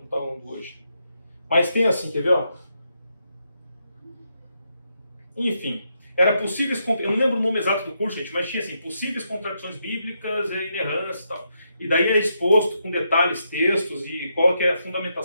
está hoje. Mas tem assim, quer ver? Ó? Enfim, era possíveis, eu não lembro o nome exato do curso, gente, mas tinha assim, possíveis contradições bíblicas e inerrância e tal. E daí é exposto com detalhes, textos e qual que é a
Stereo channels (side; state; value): both; inverted; correlation -0.80